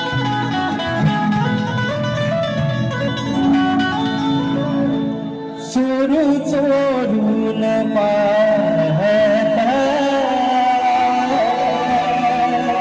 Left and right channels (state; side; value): identical; both; correlation 1.00